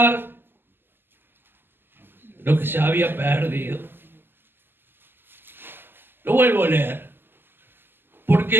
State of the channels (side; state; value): left; late; 0.098 ms